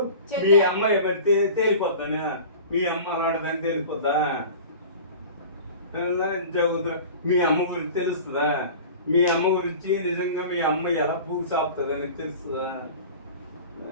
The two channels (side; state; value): both; inverted; correlation -0.38